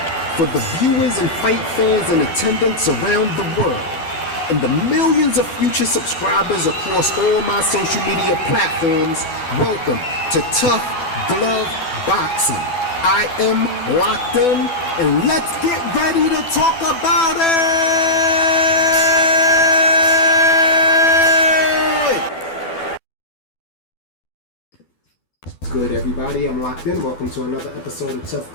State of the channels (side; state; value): right; late; 12 ms